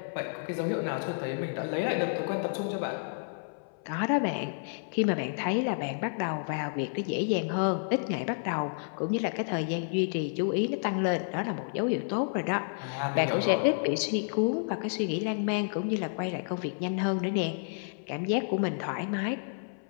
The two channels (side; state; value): right; silent; 58 dB below the other